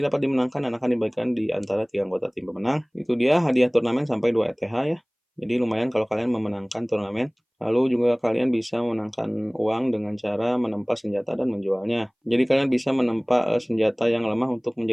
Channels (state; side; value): identical; both; correlation 1.00